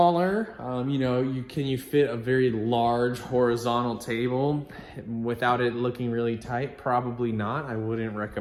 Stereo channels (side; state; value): both; identical; correlation 1.00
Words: You know, you fit a very large horizontal table without it looking really tight? Probably not. I wouldn't